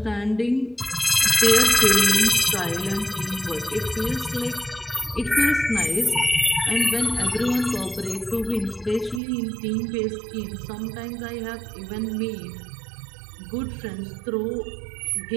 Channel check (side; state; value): left; drops out; at 9.2 s